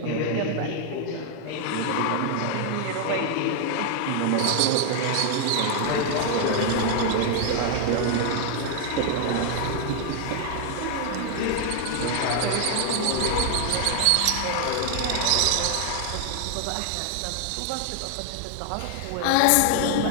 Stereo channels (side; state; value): both; different; correlation 0.00